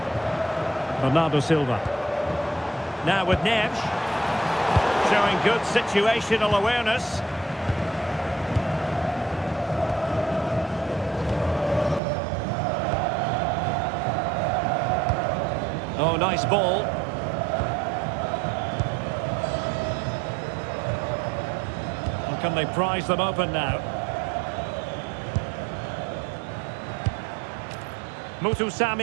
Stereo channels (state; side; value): drops out; left; at 12.0 s